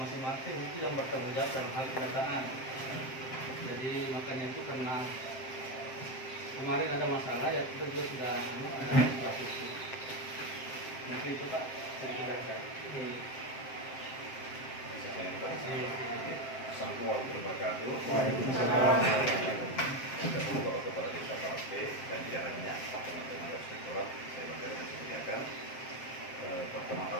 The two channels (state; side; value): late; right; 7.6 ms